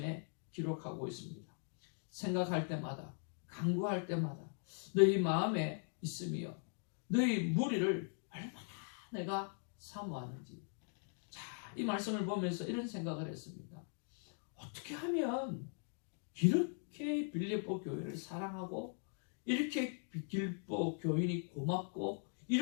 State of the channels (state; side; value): silent; right; 51 dB below the other